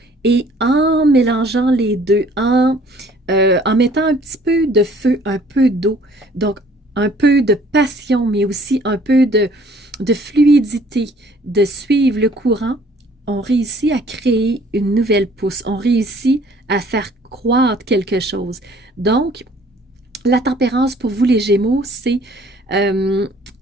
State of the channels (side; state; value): both; normal; correlation 0.57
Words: et en mélangeant les deux, en mettant un petit peu de feu, un peu d'eau, donc un peu de passion, mais aussi un peu de fluidité, de suivre le courant, on réussit à créer une nouvelle pousse, on réussit à faire croître quelque chose. Donc, la tempérance pour vous les Gémeaux, c'est